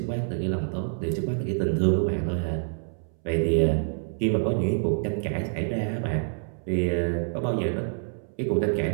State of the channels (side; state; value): left; silent; 60 dB below the other